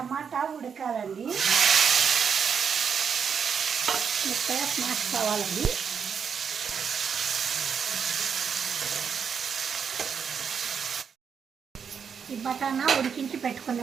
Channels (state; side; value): quieter; left; 6.8 dB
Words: ఉడకాలండి, మెత్తగా స్మాష్ కావాలండి. ఈ బటానా ఉడికించి